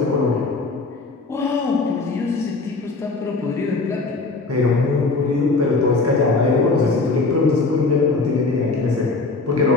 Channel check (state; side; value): quieter; right; 3.7 dB